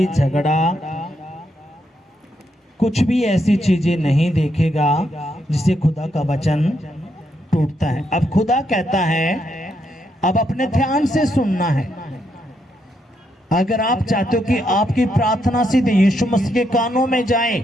झगड़ा, कुछ भी ऐसी चीजें नहीं देखेगा जिससे खुदा का वचन टूटता है। अब खुदा कहता है अब अपने ध्यान से सुनना है। अगर आप चाहते हो कि आपकी प्रार्थना सीधे यीशु मसीह के कानों में जाए,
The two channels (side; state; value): both; normal; correlation 0.79